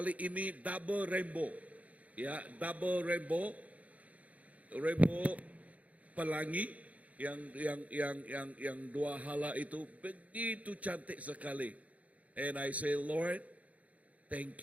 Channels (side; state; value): left; late; 0.069 ms